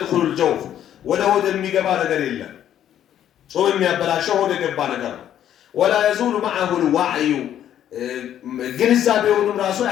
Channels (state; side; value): quieter; right; 10.7 dB